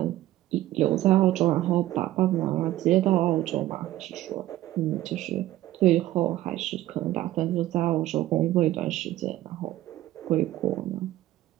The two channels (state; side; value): quieter; left; 14.8 dB